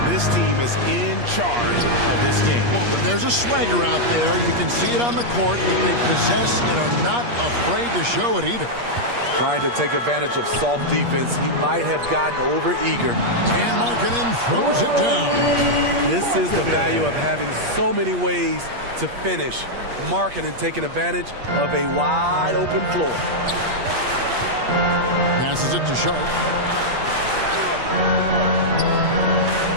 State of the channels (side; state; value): left; late; 8.4 ms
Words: this team is in charge of this game. Well, there's a swagger out there. You can see it on the court that they possess and are not afraid to show it either. Trying to take advantage of soft defense. He might have gotten over eager. And Markkanen throws it down. This is the value of having so many ways to finish. Markkanen taking advantage of a wide open floor. Passes it to Sharp.